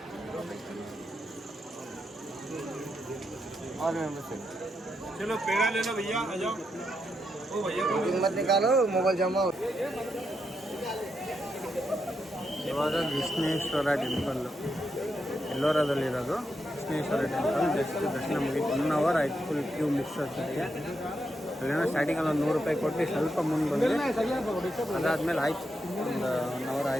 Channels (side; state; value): both; normal; correlation 0.83